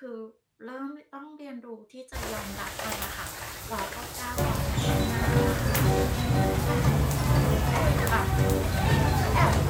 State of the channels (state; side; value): identical; both; correlation 1.00